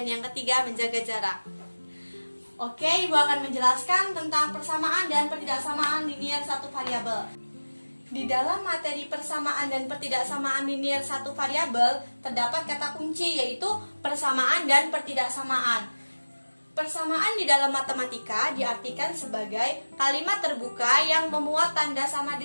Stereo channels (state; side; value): inverted; both; correlation -1.00